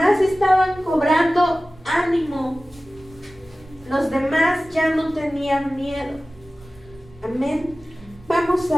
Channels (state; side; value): noise; right; rumble, 24 dB below the sound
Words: estaban cobrando ánimo. Los demás ya no tenían miedo. Amén. Vamos